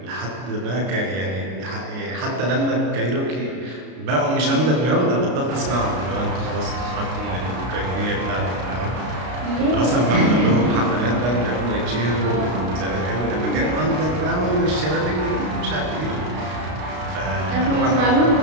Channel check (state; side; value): late; left; 33 ms